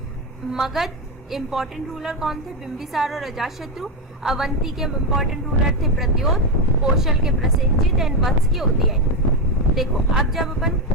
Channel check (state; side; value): normal; both; correlation 0.09